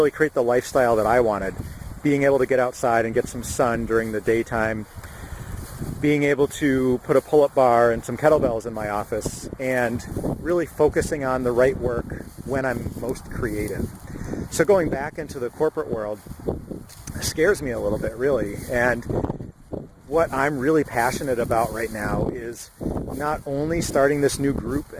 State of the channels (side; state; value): both; identical; correlation 1.00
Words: create the lifestyle that I wanted. Being able to get outside and get some sun during the daytime, being able to put a pull-up bar and some kettlebells in my office, and really focusing on the right work when I'm most creative. So going back into the corporate world scares me a little bit, really. And what I'm really passionate about right now is not only starting this new group